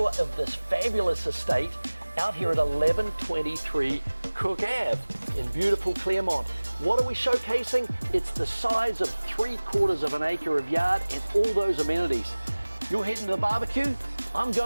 of this fabulous estate out here at 1123 Cooke Ave in beautiful Claremont. What are we showcasing? It's the size of 3/4 of an acre of yard and all those amenities. You're heading to the barbecue? I'm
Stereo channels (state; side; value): inverted; both; correlation -1.00